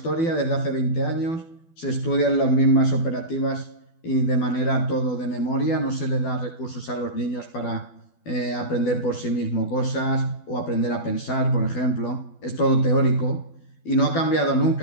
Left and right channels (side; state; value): right; late; 12 ms